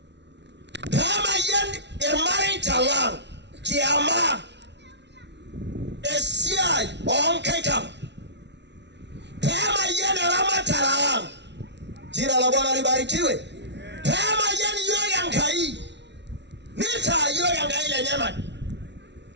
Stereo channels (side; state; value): left; late; 0.50 ms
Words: kama yen emaritalang kiama esiai onkekam kama yen ramatalang jina la Bwana libarikiwe kama yen yoga nkai nita yoga ngai le nyama